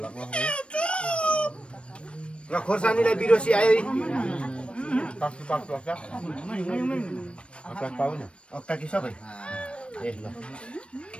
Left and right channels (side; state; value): right; late; 0.059 ms